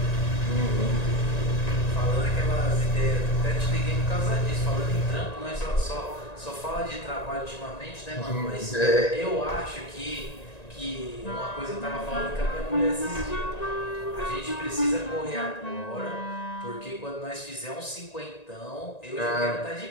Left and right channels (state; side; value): late; right; 1.9 ms